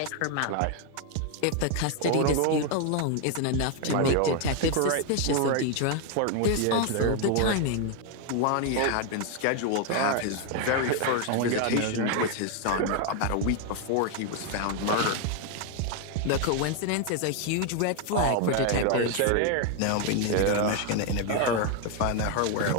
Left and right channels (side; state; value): both; different; correlation 0.01